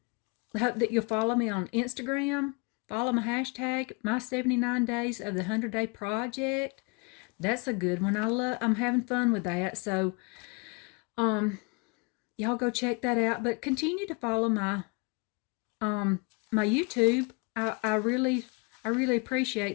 hope that you'll follow me on Instagram. Follow my hashtag, my 79 days of the 100-day project. That's a good one. I'm having fun with that. So, y'all go check that out. But continue to follow my YouTube. I really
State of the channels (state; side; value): quieter; right; 30.6 dB